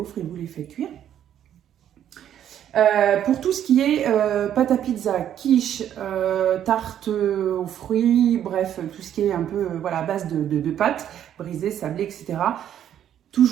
et vous les faites cuire. Pour tout ce qui est pâte à pizza, quiche, tarte aux fruits, bref, tout ce qui est un peu à base de pâtes brisées, sablées, etc.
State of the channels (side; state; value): left; quieter; 10.3 dB